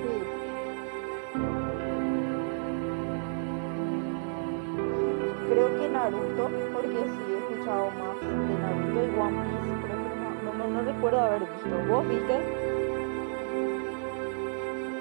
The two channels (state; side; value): silent; left; digital silence